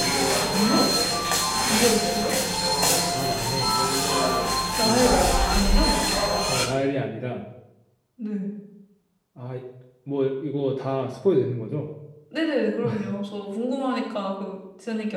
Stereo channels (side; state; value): both; identical; correlation 1.00